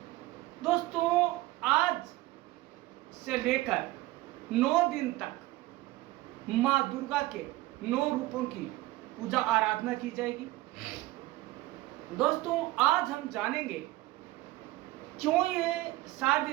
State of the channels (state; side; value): quieter; left; 18.0 dB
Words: दोस्तों, आज से लेकर 9 दिन तक माँ दुर्गा के 9 रूपों की पूजा आराधना की जाएगी। दोस्तों, आज हम जानेंगे क्यों ये